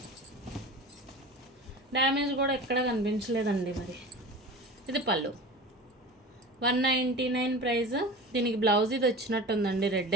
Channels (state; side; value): normal; both; correlation 0.35